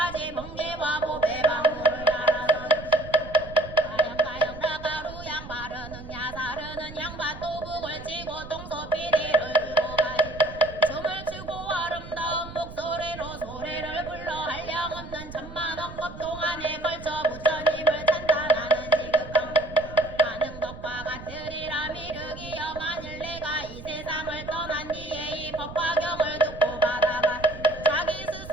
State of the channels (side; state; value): right; noise; rumble, 13 dB below the sound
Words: 번개와 보배 방울을 달아서